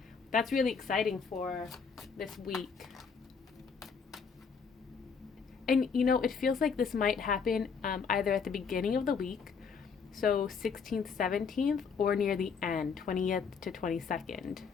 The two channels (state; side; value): quieter; right; 5.8 dB